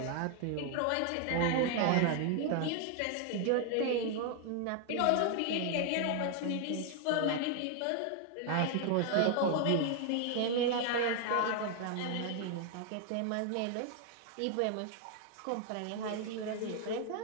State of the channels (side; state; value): both; different; correlation 0.00